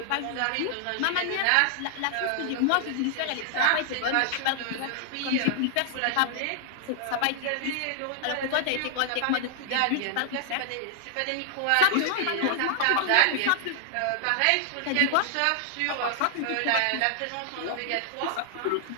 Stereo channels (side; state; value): both; different; correlation -0.01